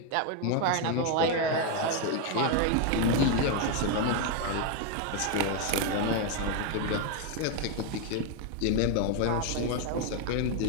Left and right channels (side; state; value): both; different; correlation 0.01